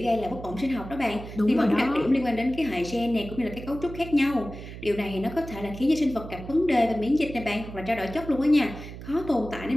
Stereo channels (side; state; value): right; noise; hum, 12 dB below the sound